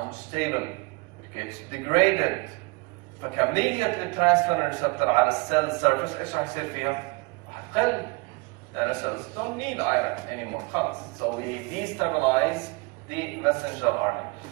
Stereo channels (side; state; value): left; quieter; 26.8 dB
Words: It gets degraded. فكمية الترانسفيرين ريسبتور على السيل سيرفيس ايش راح يصير فيها؟ راح تقل. لأن cells don't need iron anymore. خلاص. So we destabilize the messenger RNA.